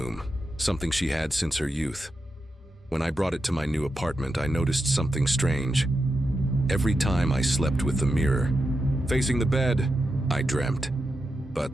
something she had since her youth. When I brought it to my new apartment, I noticed something strange. Every time I slept with the mirror facing the bed, I dreamt.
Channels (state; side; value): normal; both; correlation 0.88